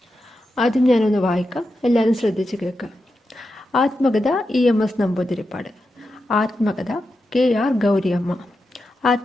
ആദ്യം ഞാനൊന്ന് വായിക്കാം, എല്ലാവരും ശ്രദ്ധിച്ച് കേൾക്കാം. ആത്മകഥ EMS നമ്പൂതിരിപ്പാട്. ആത്മകഥ KR ഗൗരിയമ്മ.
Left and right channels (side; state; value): both; normal; correlation 0.88